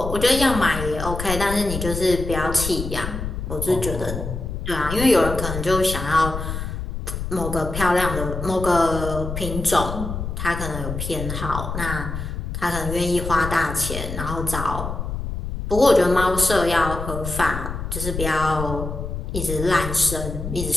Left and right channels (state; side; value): noise; left; rumble, 5 dB below the sound